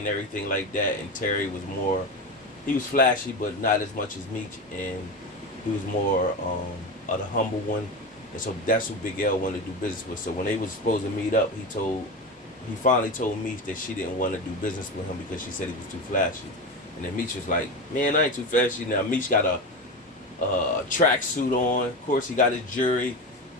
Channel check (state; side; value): normal; both; correlation 0.22